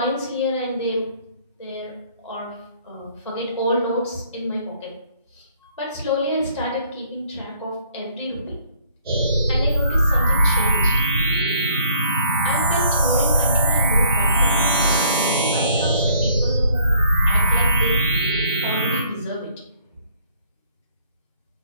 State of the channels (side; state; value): both; inverted; correlation -0.61